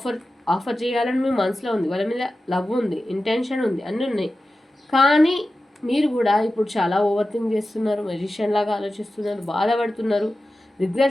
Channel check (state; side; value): normal; both; correlation 0.94